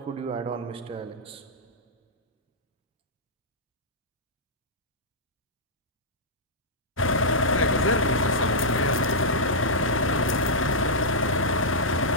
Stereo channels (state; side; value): normal; both; correlation -0.09